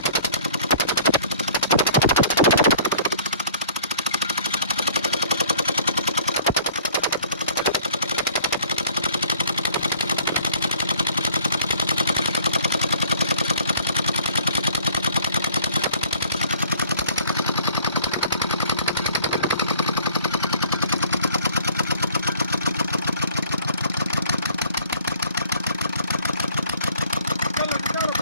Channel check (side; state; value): both; inverted; correlation -0.53